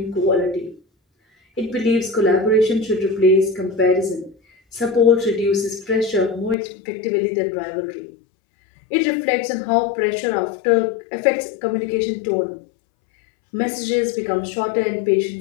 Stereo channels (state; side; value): drops out; right; at 6.6 s